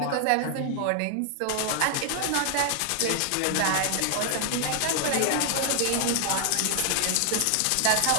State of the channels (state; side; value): different; both; correlation 0.00